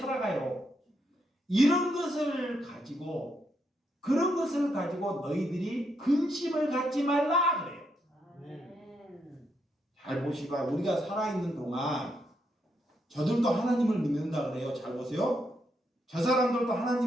그런 것을 가지고 너희들이 근심을 갖지 말라 그래요. 잘 보시고 우리가 살아있는 동안 저들도 하나님을 믿는다 그래요. 잘 보세요. 저 사람들도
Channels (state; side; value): normal; both; correlation 0.79